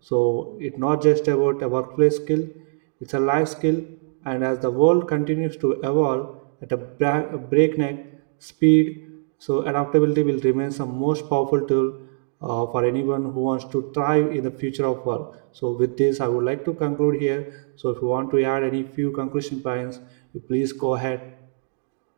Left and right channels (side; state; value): left; silent; digital silence